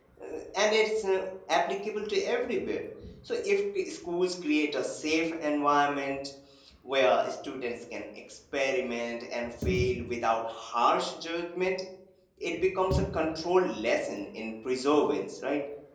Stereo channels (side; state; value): both; identical; correlation 1.00